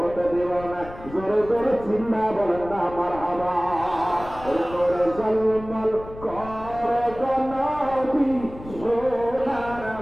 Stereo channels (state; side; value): noise; left; rumble, 15 dB below the sound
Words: দেব না। জোরে জোরে চিন্তা বলেন না মারহাবা। জোরে জলমল করে নবী সোনার